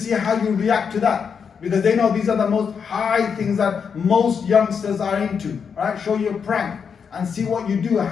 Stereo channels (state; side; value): quieter; right; 6.5 dB